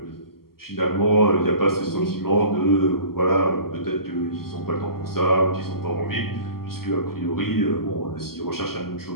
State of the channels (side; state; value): right; late; 0.93 ms